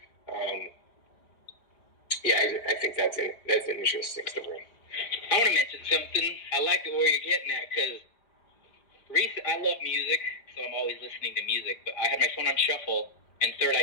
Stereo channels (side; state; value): right; late; 5.0 ms